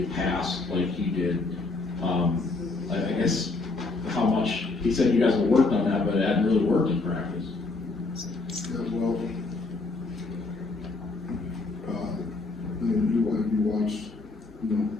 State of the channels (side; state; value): right; quieter; 3.6 dB